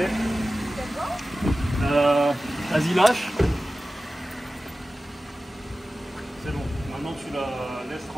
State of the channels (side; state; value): both; normal; correlation 0.95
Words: Vas-y, lâche. C'est bon. Maintenant, tu la laisses